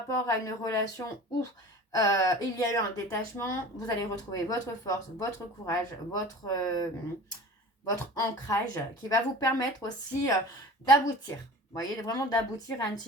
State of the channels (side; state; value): both; normal; correlation 0.39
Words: à une relation où il y a eu un détachement, vous allez retrouver votre force, votre courage, votre ancrage qui va vous permettre aussi d'aboutir. Vous voyez, vraiment d'aboutir à une